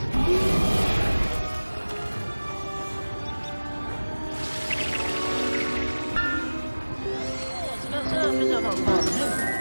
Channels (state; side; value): inverted; both; correlation -1.00